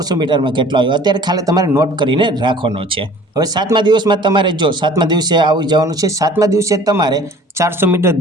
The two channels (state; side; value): normal; both; correlation 0.48